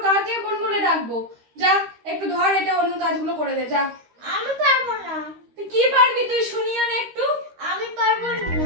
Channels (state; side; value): late; left; 13 ms